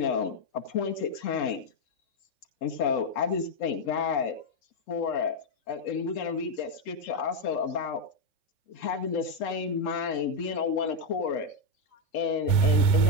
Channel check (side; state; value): right; late; 3.5 ms